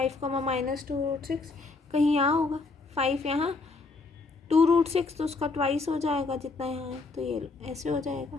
कॉमा माइनस 2 रूट 6 कहीं यहाँ होगा, 5 यहाँ 2 रूट 6 तो उसका ट्वाइस हो जाएगा जितना यहाँ है, तो ये ऐसे हो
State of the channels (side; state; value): right; quieter; 3.9 dB